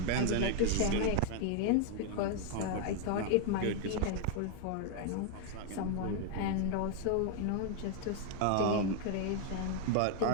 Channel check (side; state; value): both; different; correlation 0.01